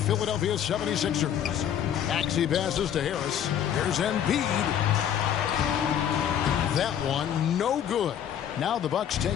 76ers. Maxey passes to Harris. Here's Embiid. That one no good. Now the Bucks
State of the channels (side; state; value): right; quieter; 9.5 dB